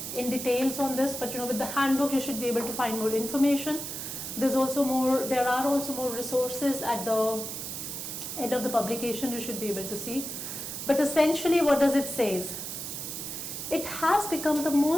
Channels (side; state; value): right; noise; hiss, 6 dB below the sound